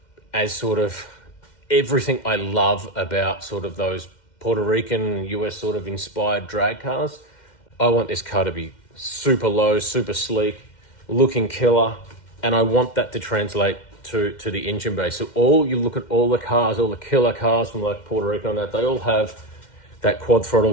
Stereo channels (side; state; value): right; late; 2.1 ms